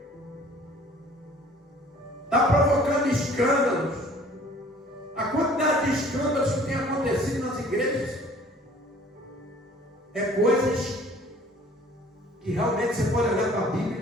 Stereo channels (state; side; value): normal; both; correlation 0.52